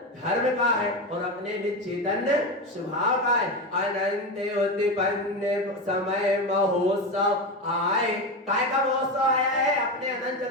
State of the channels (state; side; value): normal; both; correlation 0.18